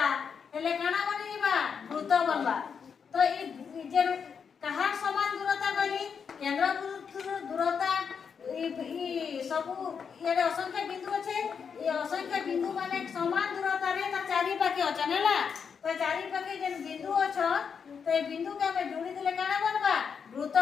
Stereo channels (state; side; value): quieter; right; 6.5 dB